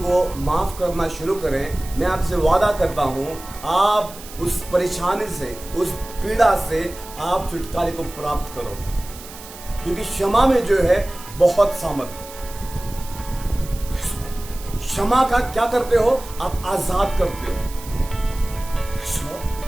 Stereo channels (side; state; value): right; noise; hiss, 16 dB below the sound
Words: माफ करना शुरू करें। मैं आपसे वादा करता हूं, आप उस परेशानी से, उस पीड़ा से आप छुटकारे को प्राप्त करोगे, क्योंकि क्षमा में जो है बहुत सामर्थ्य। क्षमा का क्या करते हो? आप आजाद करते हो।